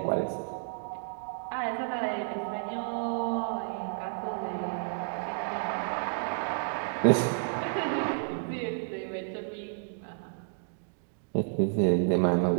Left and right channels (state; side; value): silent; left; digital silence